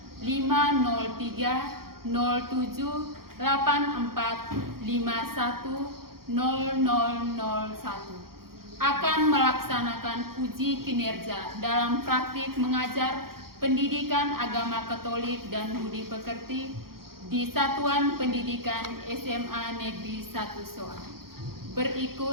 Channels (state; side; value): late; left; 0.93 ms